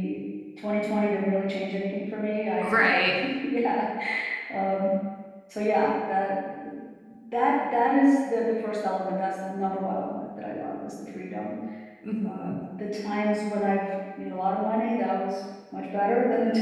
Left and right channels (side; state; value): both; identical; correlation 1.00